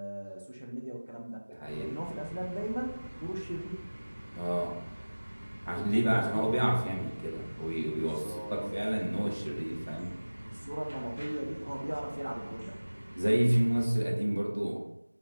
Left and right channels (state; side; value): inverted; both; correlation -1.00